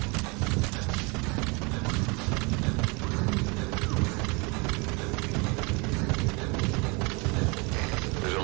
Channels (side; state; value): left; quieter; 29.6 dB